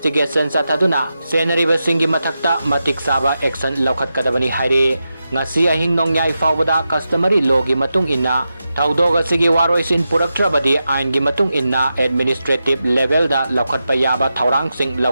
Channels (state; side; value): inverted; both; correlation -0.89